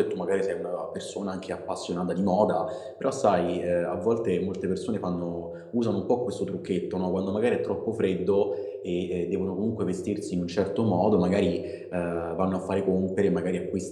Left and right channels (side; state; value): both; identical; correlation 1.00